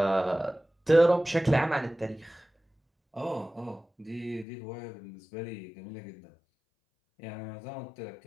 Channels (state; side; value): drops out; right; at 4.5 s